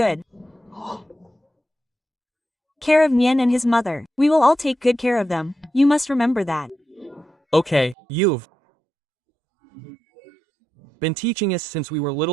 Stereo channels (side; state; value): left; drops out; at 8.0 s